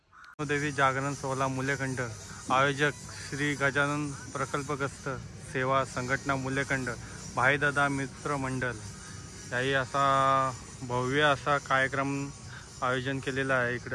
देवी जागरण सोहळा मुलेखंड आयोजक श्री गजानन प्रकल्पग्रस्त सेवा संघटना मुलेखंड भाईदादा मित्र मंडळ याही असा भव्य असा कार्यक्रम आयोजन केलेला आहे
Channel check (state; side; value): identical; both; correlation 1.00